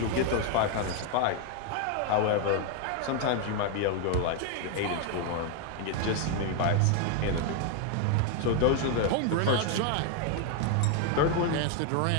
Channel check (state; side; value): different; both; correlation 0.01